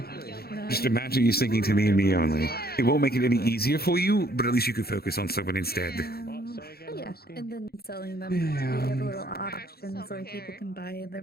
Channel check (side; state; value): right; late; 0.45 ms